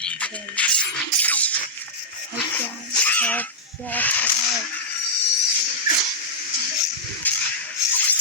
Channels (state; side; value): normal; both; correlation -0.08